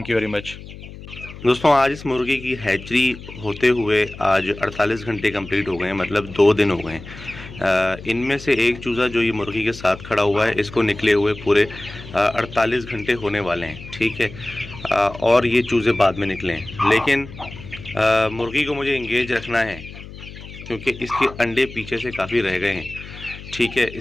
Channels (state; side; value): noise; left; hum, 15 dB below the sound